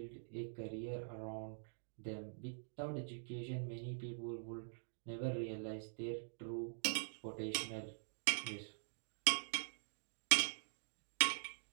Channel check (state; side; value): silent; left; digital silence